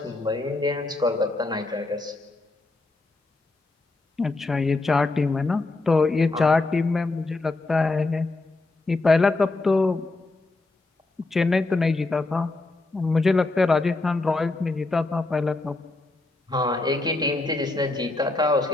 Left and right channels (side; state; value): right; quieter; 3.2 dB